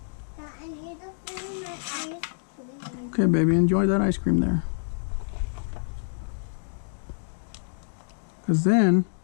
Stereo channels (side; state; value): right; silent; digital silence